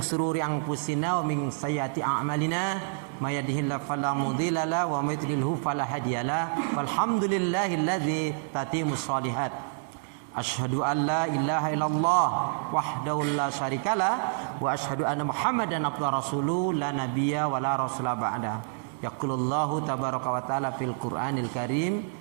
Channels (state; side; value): silent; left; digital silence